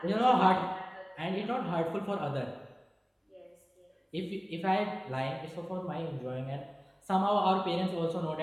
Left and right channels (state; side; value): identical; both; correlation 1.00